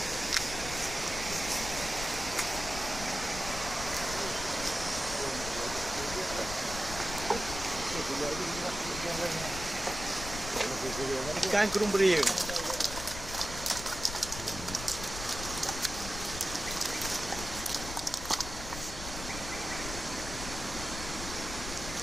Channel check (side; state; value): left; noise; rumble, 8 dB below the sound